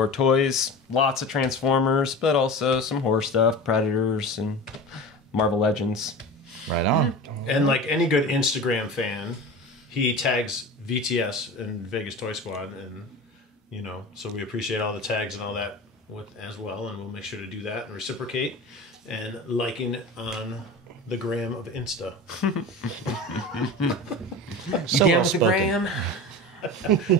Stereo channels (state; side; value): normal; both; correlation 0.31